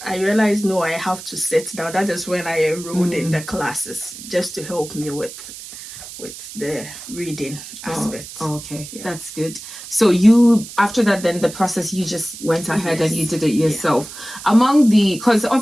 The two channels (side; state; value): right; noise; hiss, 13 dB below the sound